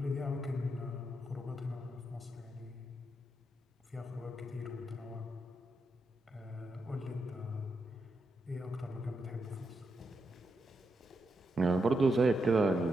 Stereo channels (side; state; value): both; normal; correlation 0.83